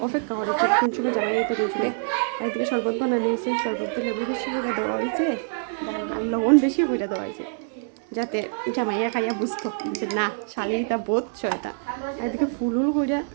অপেক্ষা করেছে কোন সময় জামাই এই তো কোন সময়। আর এদিকে শরবত বানানো হয়েছে, শরবতে লেবু বেশি করে দেওয়া হয়েছে আর লবণ বেশি করে দেওয়া হয়েছে, যাতে জামাইয়া খাইয়া বুঝতো যে না শালিটা বোধ ছয়টা। আর এদিকে ফুল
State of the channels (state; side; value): silent; left; digital silence